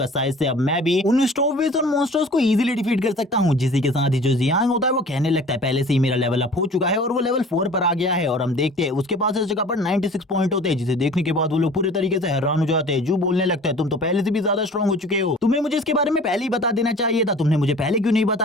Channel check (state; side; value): normal; both; correlation 0.45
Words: शायद से अब मैं भी उन स्टोवेज और मॉन्स्टर्स को इजीली डिफीट कर सकता हूँ। जिसी के साथ ही जो जियांग होता है वो कहने लगता है पहले से ही मेरा लेवल अप हो चुका है और वो लेवल 4 पर आ गया है। और हम देखते हैं उसके पास इस जगह पर 96 पॉइंट होते हैं, जिसे देखने के बाद वो लोग पूरे तरीके से हैरान हो जाते हैं। जू बोलने लगता है तुम तो पहले से भी ज्यादा स्ट्रॉन्ग हो चुके हो, तुम्हें मुझे इसके बारे में पहले ही बता देना चाहिए था, तुमने मुझे पहले क्यों नहीं